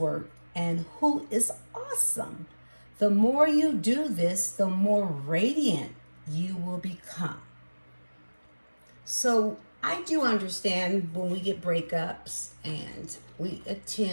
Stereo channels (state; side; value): inverted; both; correlation -1.00